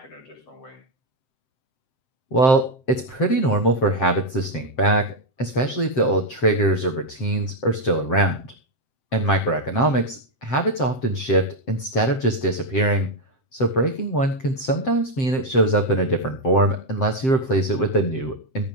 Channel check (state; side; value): late; right; 7.7 ms